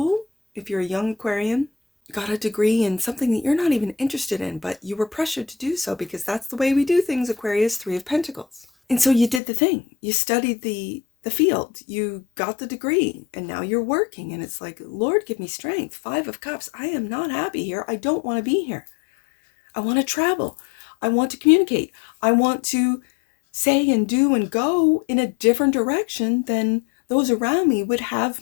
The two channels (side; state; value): right; drops out; at 9.4 s